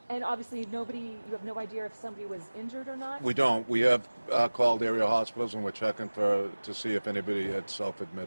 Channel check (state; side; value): inverted; both; correlation -1.00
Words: And obviously you have no idea if somebody was injured or not? We don't. We have called area hospitals, and we're checking to see if anybody had